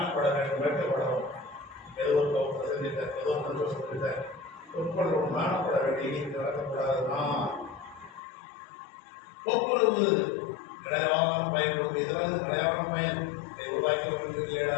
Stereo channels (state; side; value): drops out; right; at 8.2 s